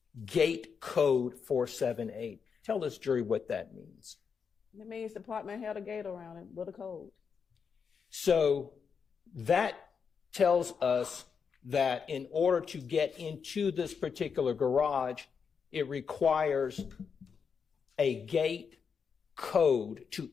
gate code 478? Tell this jury what that means. It means the apartment had a gate around it with a code. So that tells us that in order to get into this particular garage, it requires a gate code to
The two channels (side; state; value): right; quieter; 6.2 dB